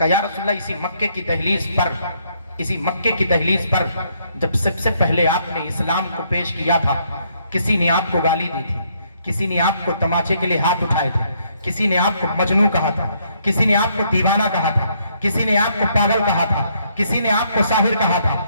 یا رسول اللہ اسی مکے کی دہلیز پر جب سب سے پہلے آپ نے اسلام کو پیش کیا تھا, کسی نے آپ کو گالی دی تھی, کسی نے آپ کو تماچے کے لیے ہاتھ اٹھائے تھے, کسی نے آپ کو مجنون کہا تھا, کسی نے آپ کو دیوانہ کہا تھا, کسی نے آپ کو پاگل کہا تھا, کسی نے آپ کو ساحر کہا تھا.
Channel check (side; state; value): both; inverted; correlation -0.70